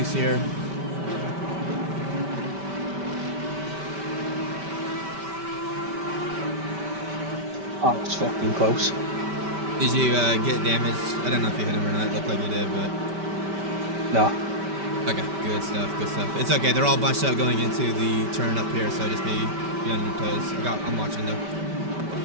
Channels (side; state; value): left; late; 5.1 ms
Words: here. Oh, it's fucking close. Did you get damaged? I don't know if you hit him or not. It looked like you did, but No. okay, good stuff, good stuff. It's okay. They're all bunched up going into the turn up here, so just be on your toes. I'm watching though.